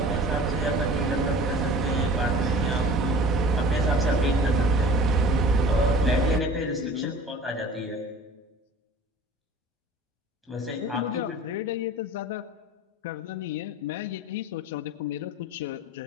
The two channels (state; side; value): normal; both; correlation 0.43